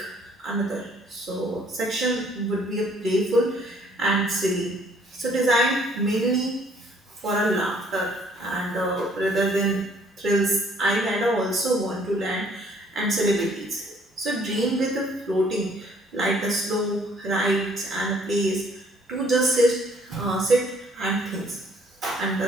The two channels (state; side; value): normal; both; correlation 0.61